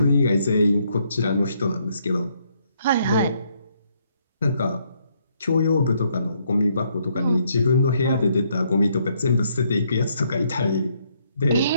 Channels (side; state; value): both; inverted; correlation -0.72